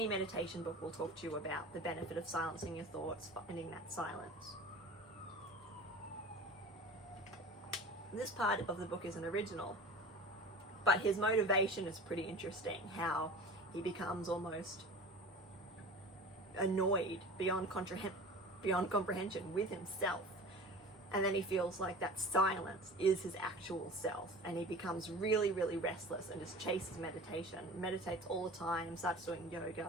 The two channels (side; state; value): both; normal; correlation 0.38